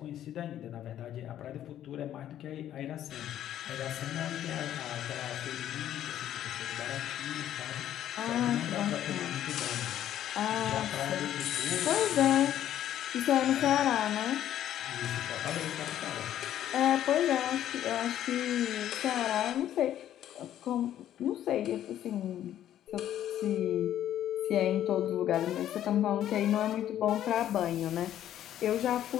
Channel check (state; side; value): quieter; right; 11.5 dB